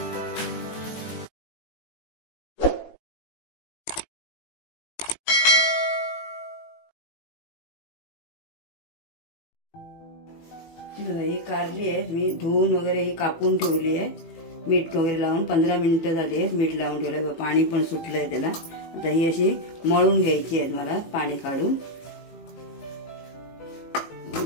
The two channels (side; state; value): right; late; 18 ms